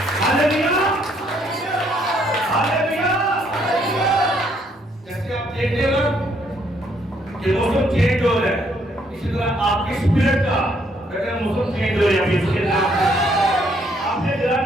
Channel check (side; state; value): both; normal; correlation 0.69